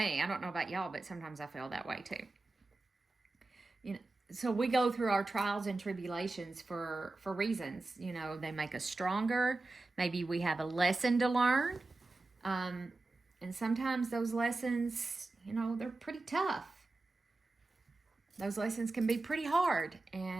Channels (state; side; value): quieter; left; 3.2 dB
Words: I don't know about y'all, but sometimes I feel that way too. You know, so we go through our trials and tribulations for reasons. You know, they make us stronger. Maybe we have a lesson to learn. And sometimes those lessons, you know, they're pretty tough. Those lessons can be pretty hard,